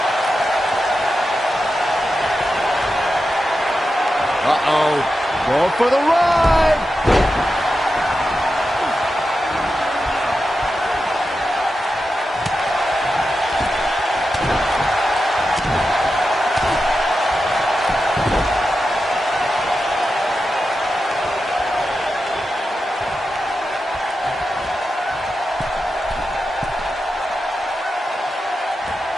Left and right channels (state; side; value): normal; both; correlation 0.90